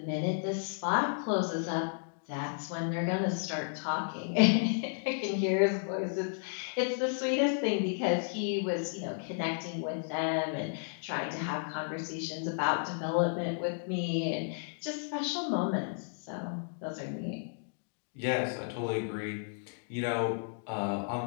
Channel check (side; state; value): right; silent; digital silence